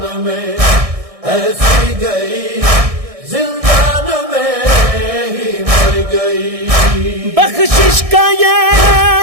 میں ایسی گئی زندان میں ہی مر گئی بخشش کا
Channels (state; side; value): late; left; 1.6 ms